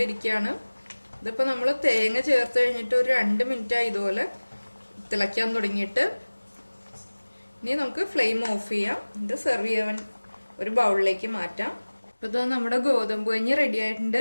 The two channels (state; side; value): inverted; both; correlation -1.00